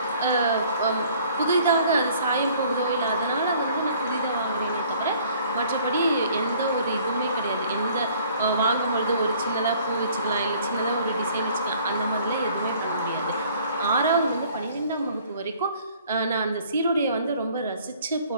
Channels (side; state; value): both; inverted; correlation -0.57